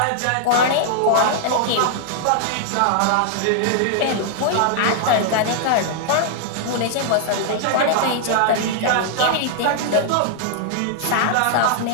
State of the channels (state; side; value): different; both; correlation -0.01